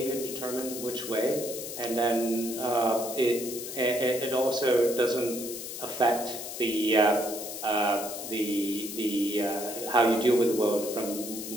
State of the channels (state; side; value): noise; left; hiss, 8 dB below the sound